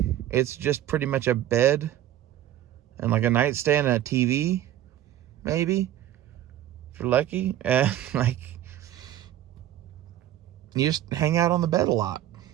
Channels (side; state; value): left; quieter; 12.4 dB